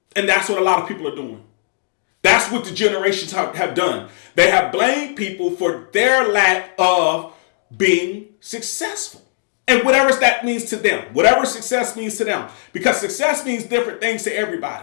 And that's what a lot of people are doing. That's what the generations have done. They have blamed people for their lack of being successful. And whatever that means to them, whatever success means to them, because success means different things to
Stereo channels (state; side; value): silent; right; digital silence